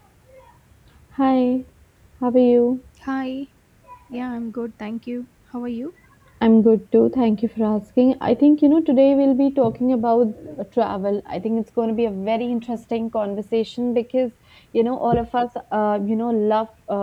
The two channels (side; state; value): both; identical; correlation 1.00